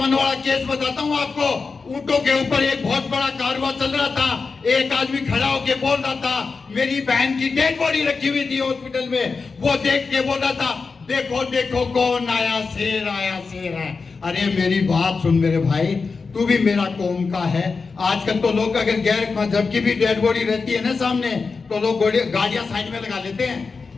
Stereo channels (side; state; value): right; quieter; 4.6 dB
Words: वाला केस बताता हूँ आपको, ऊंटों के ऊपर एक बहुत बड़ा कारवां चल रहा था। एक आदमी खड़ा होके बोल रहा था, मेरी बहन की डेड बॉडी रखी हुई थी हॉस्पिटल में, वो देख के बोल रहा था, देखो देखो कौन आया, शेर आया, शेर है। अरे मेरी बात सुन मेरे भाई, तू भी मेरा कौम का है। आजकल तो लोग अगर गैर मजहब की भी डेड बॉडी रहती है ना सामने, तो लोग गाड़ियां साइड में लगा लेते हैं।